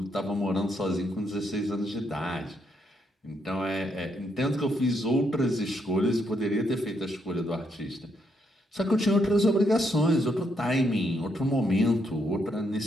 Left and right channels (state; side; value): normal; both; correlation 0.76